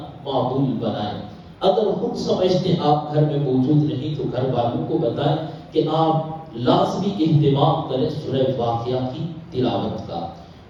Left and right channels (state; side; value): identical; both; correlation 1.00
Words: معمول بنائیں۔ اگر خود سمجھتے آپ گھر میں موجود نہیں تو گھر والوں کو بتائیں کہ آپ لازمی اہتمام کریں سورہ واقعہ کی تلاوت کا۔